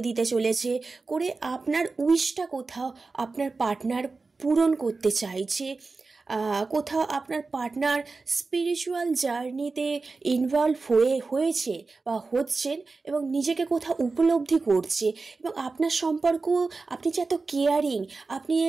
দিতে চলেছে, করে আপনার উইশটা কোথাও আপনার পার্টনার পূরণ করতে চাইছে। কোথাও আপনার পার্টনার স্পিরিচুয়াল জার্নিতে ইনভলভ হয়েছে বা হচ্ছেন, এবং নিজেকে কোথাও উপলব্ধি করছে। এবং আপনার সম্পর্ক, আপনি যে এত কেয়ারিং, আপনি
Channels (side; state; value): left; quieter; 4.0 dB